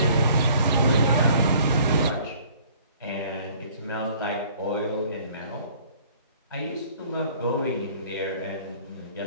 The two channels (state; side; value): inverted; both; correlation -0.55